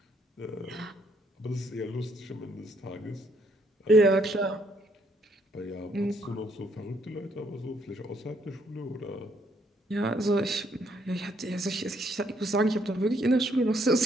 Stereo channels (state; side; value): normal; both; correlation 0.70